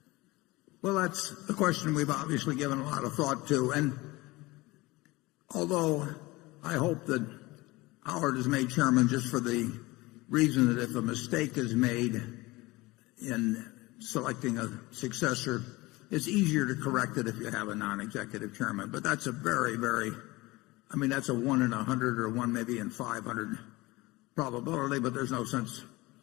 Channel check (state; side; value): quieter; right; 21.4 dB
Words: Well, that's a question we've obviously given a lot of thought to, and although I hope that Howard is made chairman just for the reason that if a mistake is made in selecting a successor, it's easier to correct it if you have a non-executive chairman. But that's a very, that's a 1 in 100 or 1 maybe in 500 probability, but there's no sense